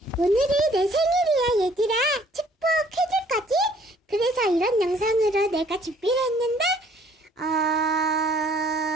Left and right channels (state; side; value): normal; both; correlation 0.59